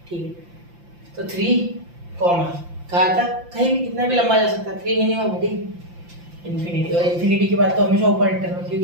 ठीक है। तो 3 कॉमा कहा था, कहीं भी कितना भी लंबा जा सकता है, 3 मिनिमम है, ठीक, इन्फिनिटी, और इन्फिनिटी के बाद तो हमेशा ओपन इंटरवल,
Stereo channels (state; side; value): late; left; 5.8 ms